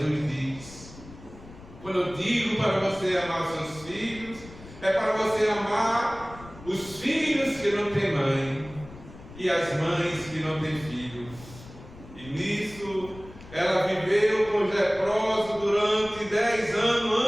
diz: quando eu digo para você amar os seus filhos, é para você amar os filhos que não têm mãe e as mães que não têm filhos. E nisso, ela viveu com os leprosos durante 10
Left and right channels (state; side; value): noise; left; rumble, 18 dB below the sound